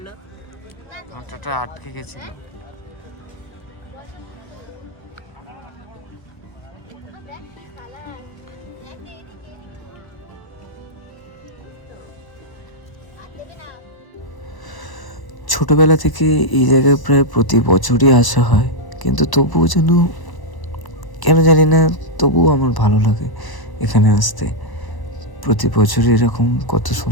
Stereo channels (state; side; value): late; right; 1.0 ms